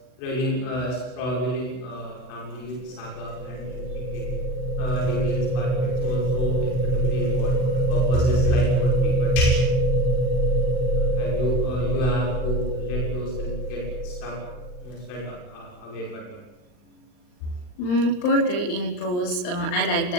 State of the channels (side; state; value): right; late; 39 ms